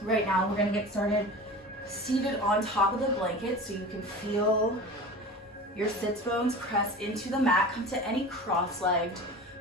right now we're gonna get started seated on top of the blanket so you can feel your sits bones press into the mat. Come to any cross-legged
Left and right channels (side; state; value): both; normal; correlation 0.35